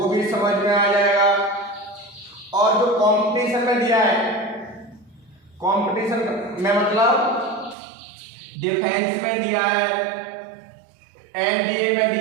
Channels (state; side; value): drops out; left; at 7.8 s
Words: भी समझ में आ जाएगा, और जो कंपटीशन में दिया है, कंपटीशन में मतलब डिफेंस में दिया है, एनडीए में